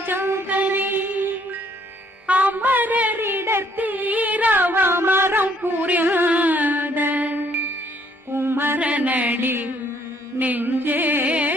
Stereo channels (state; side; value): normal; both; correlation 0.65